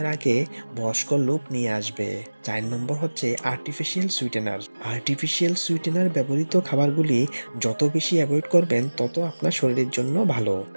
আগে বয়স্ক লুক নিয়ে আসবে। ৪ নম্বর হচ্ছে আর্টিফিশিয়াল সুইটেনার। আর্টিফিশিয়াল সুইটেনার ব্যবহৃত খাবারগুলি যত বেশি অ্যাভয়েড করবেন তত আপনার শরীরের জন্য ভালো।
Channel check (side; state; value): both; inverted; correlation -1.00